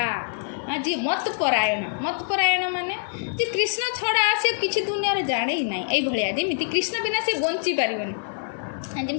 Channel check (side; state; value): right; silent; digital silence